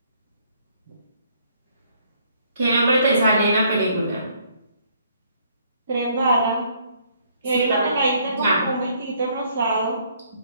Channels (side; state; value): both; inverted; correlation -0.65